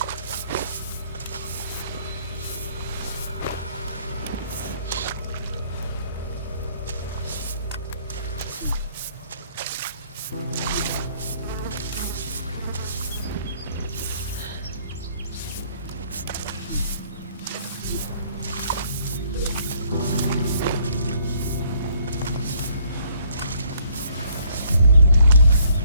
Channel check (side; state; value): both; inverted; correlation -0.64